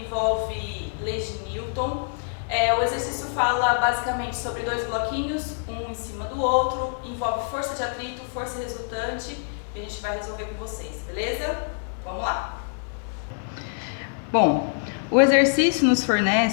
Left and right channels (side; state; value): right; silent; digital silence